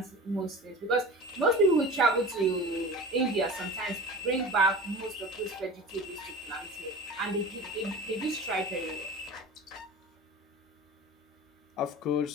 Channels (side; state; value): both; normal; correlation 0.35